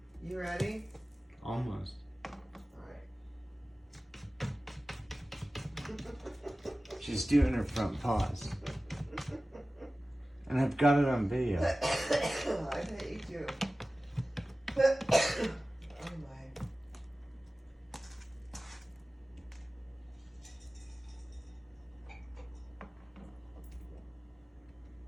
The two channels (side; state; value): both; normal; correlation 0.97